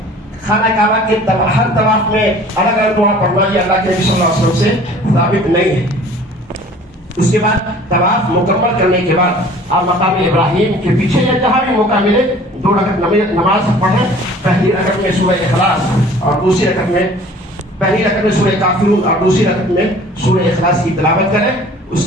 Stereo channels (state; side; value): normal; both; correlation 0.49